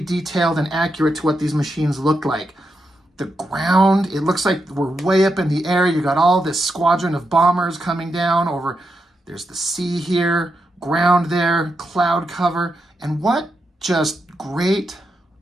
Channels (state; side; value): normal; both; correlation 0.85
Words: and accurate to what these machines look like. The ground, it looks like we're way up in the air. You got all this squadron of bombers coming down over. There's the sea here, ground there, cloud cover. And what just great